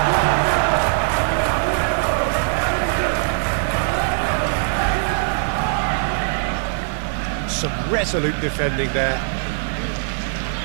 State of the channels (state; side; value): silent; left; 65 dB below the other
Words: Some resolute defending there.